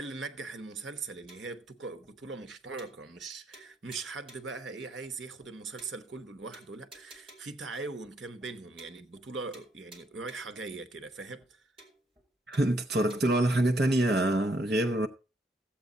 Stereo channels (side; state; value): both; normal; correlation 0.72